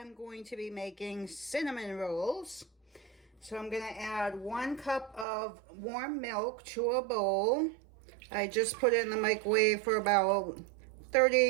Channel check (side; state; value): left; drops out; at 5.2 s